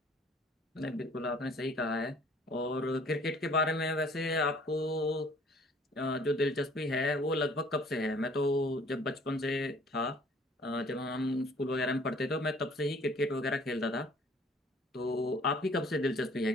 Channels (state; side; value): normal; both; correlation 0.56